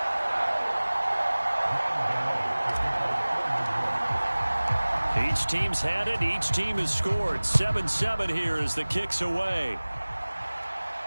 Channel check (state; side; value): inverted; both; correlation -1.00